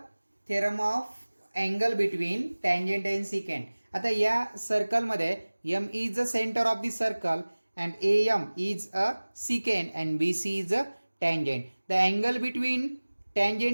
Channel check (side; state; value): both; inverted; correlation -1.00